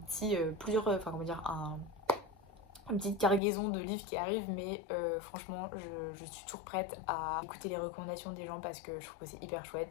petit enfin comment dire une petite cargaison de livres qui arrivent mais franchement je suis toujours prête à écouter les recommandations des gens parce que je trouve que c'est hyper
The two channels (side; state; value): right; drops out; at 3.4 s